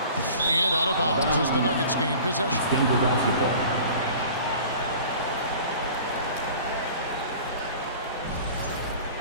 And out of bounds as the Nuggets gain possession. Denver basketball.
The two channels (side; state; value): both; inverted; correlation -0.44